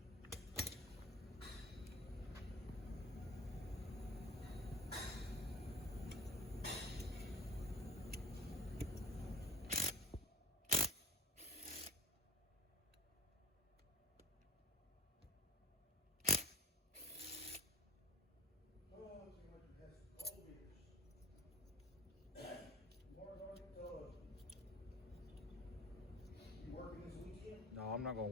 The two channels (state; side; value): normal; both; correlation 0.38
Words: No, I'm not gonna